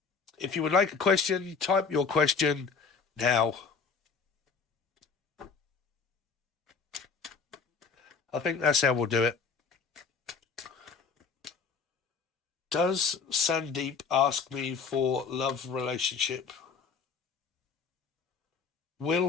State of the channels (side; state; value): right; quieter; 5.3 dB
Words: if you would like a question, type your question now. I think that's how we'll do it. Does Sandeep ask me for love relationship?